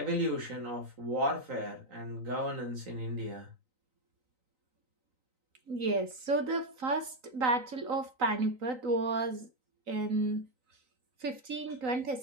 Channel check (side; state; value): left; late; 3.9 ms